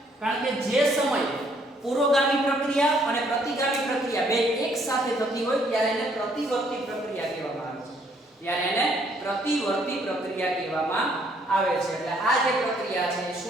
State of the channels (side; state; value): both; normal; correlation 0.66